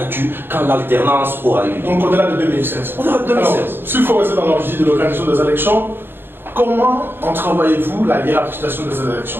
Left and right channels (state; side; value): late; left; 0.10 ms